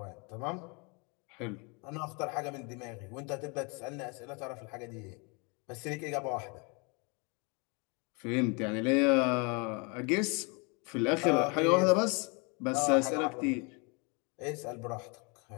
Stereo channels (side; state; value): right; quieter; 31.7 dB